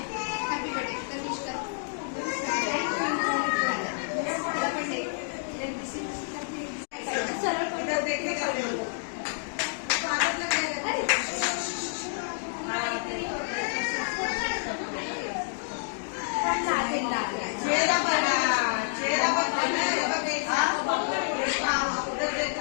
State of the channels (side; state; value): right; silent; digital silence